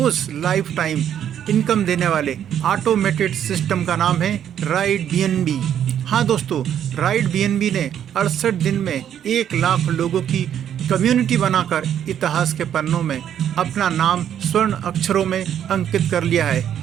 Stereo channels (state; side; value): quieter; left; 9.7 dB